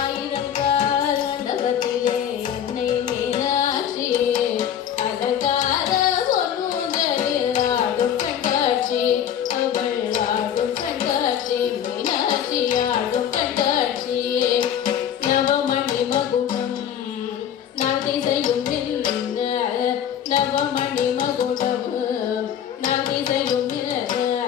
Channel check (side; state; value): right; quieter; 9.5 dB